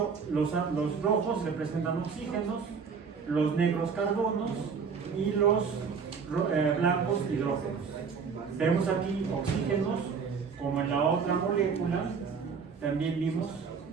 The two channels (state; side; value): quieter; left; 5.8 dB